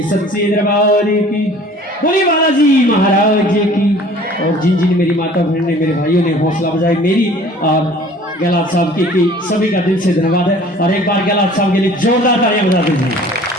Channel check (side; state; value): both; normal; correlation 0.49